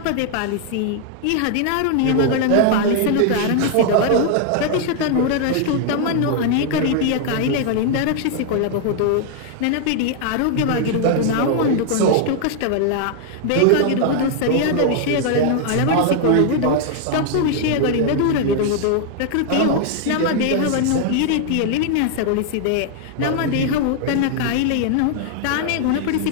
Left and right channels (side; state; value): both; different; correlation 0.00